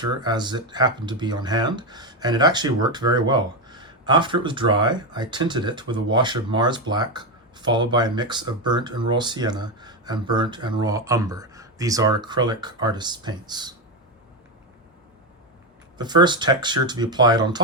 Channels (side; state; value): both; normal; correlation 0.10